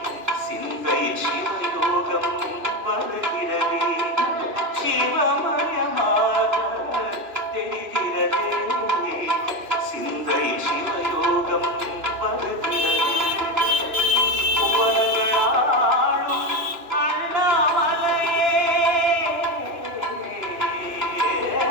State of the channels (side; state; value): left; late; 3.0 ms